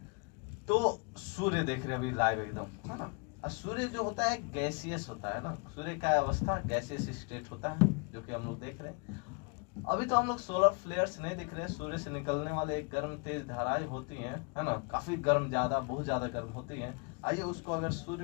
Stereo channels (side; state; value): right; quieter; 34.0 dB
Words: तो सूर्य देख रहे हैं अभी लाइव एकदम, है ना। और सूर्य जो होता है गैसियस होता है ना, सूर्य का अवस्था गैसियस स्टेट होता है जो कि हम लोग देख रहे हैं। अभी तो हम लोग सोलर फ्लेयर्स नहीं दिख रहे, सूर्य से निकलने वाले एक गर्म तेज धाराएं होती हैं, है ना, काफी गर्म, ज्यादा बहुत ज्यादा गर्म होती हैं। आइए उसको अगर